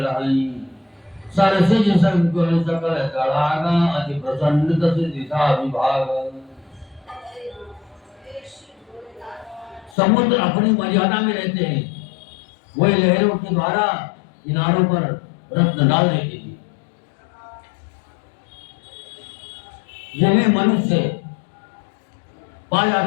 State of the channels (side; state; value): right; drops out; at 10.0 s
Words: रहाई सरसिज संकुल सकल तड़ागा अति प्रसन्न तस दिशा विभाग। समुद्र अपनी मर्यादा में रहते हैं, वही लहरों के द्वारा किनारों पर रत्न डाल देती थी। जिन्हें मनुष्य पा